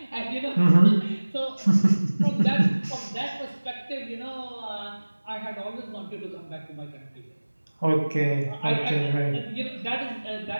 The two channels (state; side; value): inverted; both; correlation -1.00